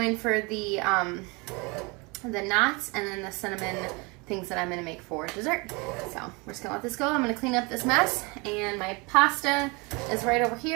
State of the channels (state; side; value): quieter; left; 28.1 dB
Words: for the knots and then the cinnamon things that I'm going to make for dessert. So we're just going to let this go. I'm going to clean up this mess, and my pasta is right over